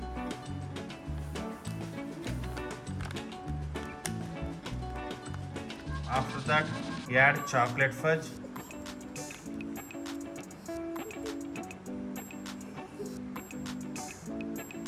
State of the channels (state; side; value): identical; both; correlation 1.00